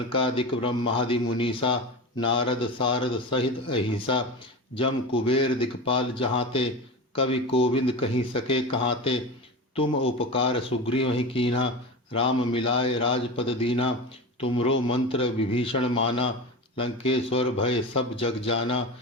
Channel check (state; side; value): normal; both; correlation 0.26